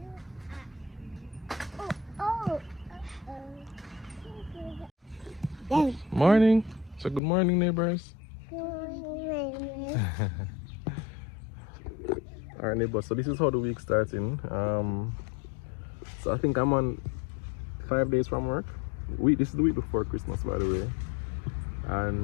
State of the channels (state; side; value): drops out; right; at 7.2 s